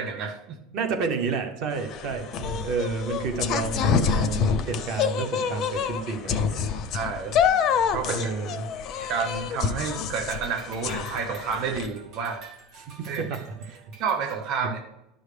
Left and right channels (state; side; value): normal; both; correlation 0.32